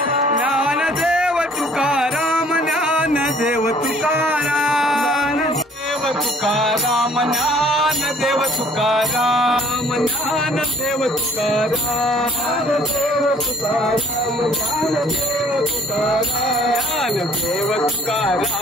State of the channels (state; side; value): normal; both; correlation 0.57